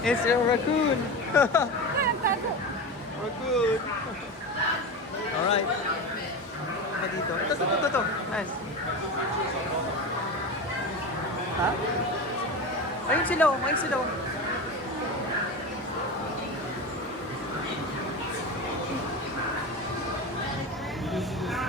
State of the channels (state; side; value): normal; both; correlation 0.24